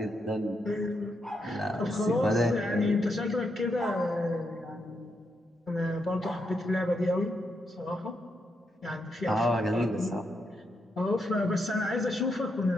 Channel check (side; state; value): both; normal; correlation 0.81